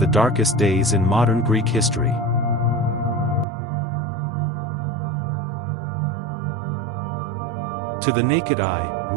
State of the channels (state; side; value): drops out; left; at 3.5 s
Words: darkest days in modern Greek history. To the naked eye,